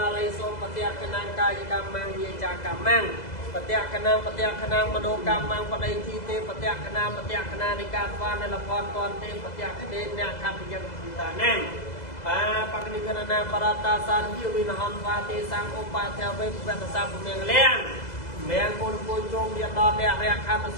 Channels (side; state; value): right; late; 2.0 ms